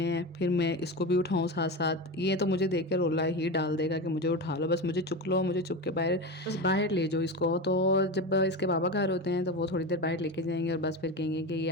हैं, फिर मैं इसको भी उठाऊँ साथ-साथ। ये तो मुझे देख के रोला ही डाल देगा कि मुझे उठा लो, बस मुझे चुक लो, मुझे चुक के बस बाहर ले जाओ इसको। तो जब इसके पापा घर होते हैं तो वो थोड़ी देर बाहर लेके जाएँगे और बस फिर कहेंगे कि ये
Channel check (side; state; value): both; normal; correlation 0.22